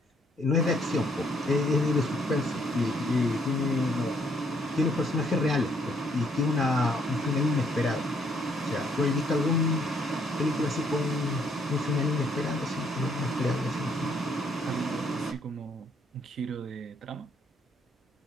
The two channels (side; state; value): both; normal; correlation 0.68